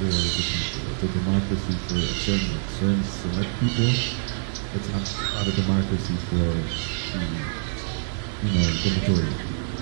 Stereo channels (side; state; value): left; silent; 61 dB below the other